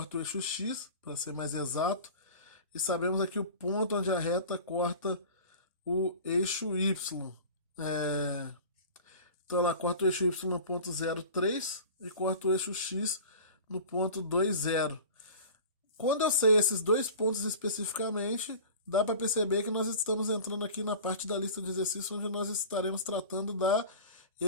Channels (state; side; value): inverted; both; correlation -0.38